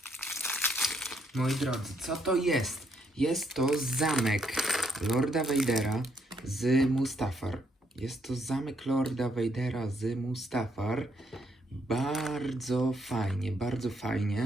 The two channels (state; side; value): normal; both; correlation 0.73